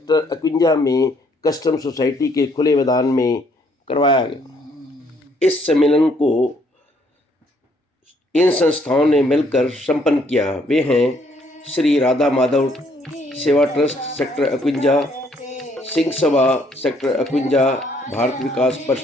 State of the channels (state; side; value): normal; both; correlation 0.67